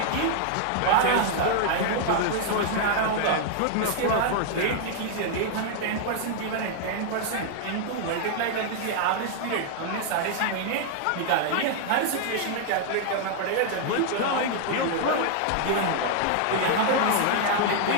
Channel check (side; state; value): both; different; correlation 0.00